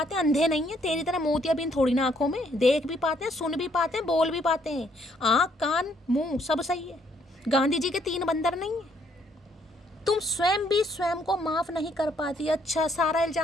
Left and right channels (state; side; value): normal; both; correlation 0.68